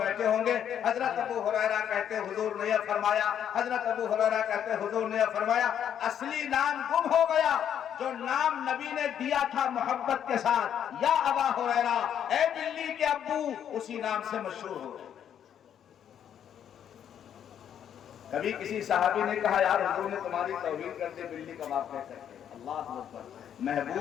ہوں گے، حضرت ابو ہریرہ کہتے حضور نے یہ فرمایا، حضرت ابو ہریرہ کہتے حضور نے یہ فرمایا۔ اصلی نام گم ہو گیا، جو نام نبی نے دیا تھا محبت کے ساتھ، یا ابا ہریرہ، اے بلی کے ابو، اسی نام سے مشہور ہو گئے۔ کبھی کسی صحابی نے کہا یار حضور نے تمہاری توہین کر دی بلی کا باپ کہہ کر کے، اللہ اکبر۔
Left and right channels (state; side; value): quieter; right; 9.3 dB